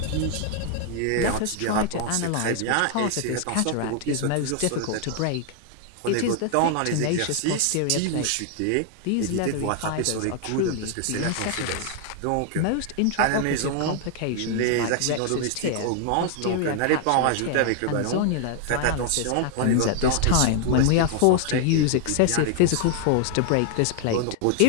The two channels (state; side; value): different; both; correlation 0.00